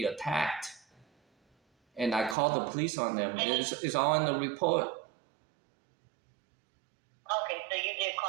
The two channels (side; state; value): left; drops out; at 2.4 s